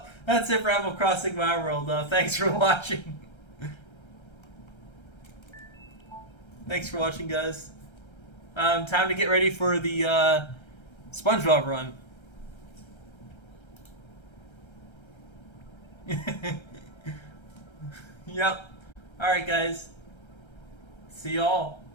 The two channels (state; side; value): late; right; 1.3 ms